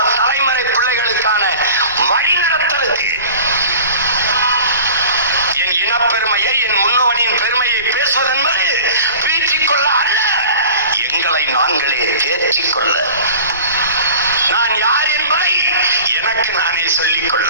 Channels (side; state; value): both; inverted; correlation -0.41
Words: தலைமுறை பிள்ளைகளுக்கான வழிநடத்தலுக்கு. என் இனப்பெருமையை, என் முன்னோனின் பெருமையை பேசுவது என்பது பீற்றிக்கொள்ள அல்ல, எங்களை நாங்களே தேற்றிக்கொள்ள, நான் யார் என்பதை எனக்கு நானே